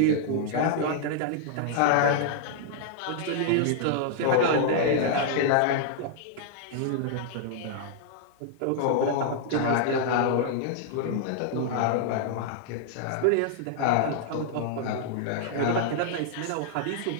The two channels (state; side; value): different; both; correlation 0.00